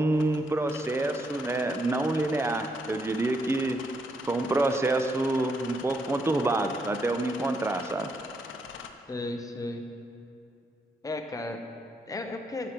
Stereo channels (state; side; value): normal; both; correlation 0.77